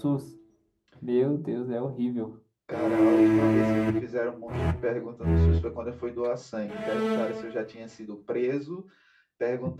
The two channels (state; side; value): identical; both; correlation 1.00